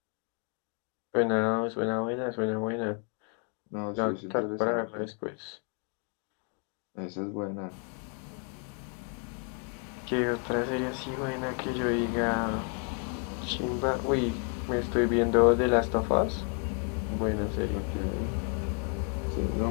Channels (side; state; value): right; quieter; 37.4 dB